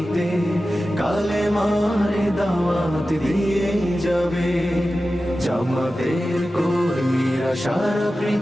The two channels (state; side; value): normal; both; correlation 0.94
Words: কালেমার দাওয়াত দিয়ে যাবে। জামাতের কর্মীরা সারা